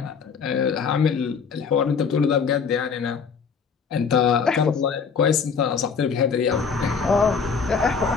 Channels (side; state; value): right; quieter; 5.9 dB